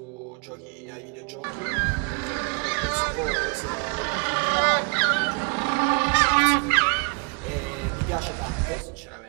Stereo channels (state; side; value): quieter; left; 34.7 dB